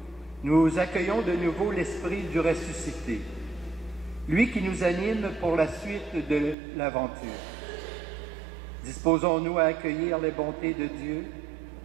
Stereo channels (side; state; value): left; drops out; at 6.6 s